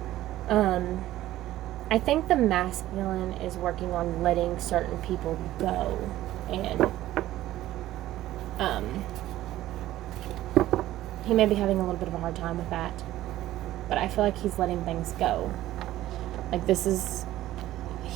I think the masculine is working on letting certain people go, and he may be having a little bit of a hard time with that, but I feel like he's letting things go. Like,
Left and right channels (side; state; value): left; quieter; 14.7 dB